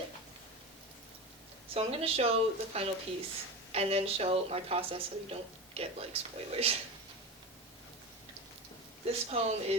So I'm going to show the final piece and then show my process so you don't get spoilers. This poem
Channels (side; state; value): both; normal; correlation 0.24